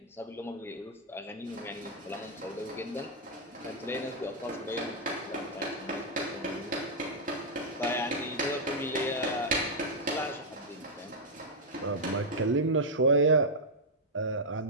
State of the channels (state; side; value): normal; both; correlation -0.04